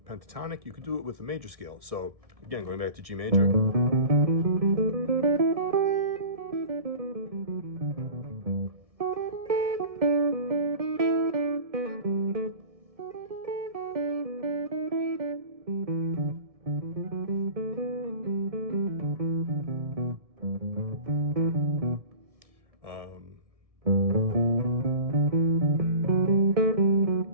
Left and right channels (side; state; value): left; late; 1.7 ms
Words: pentatonic, you could do it with a major scale. So again, going back to G major.